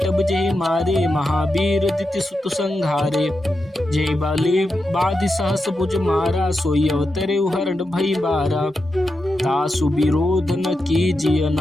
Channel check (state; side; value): normal; both; correlation 0.88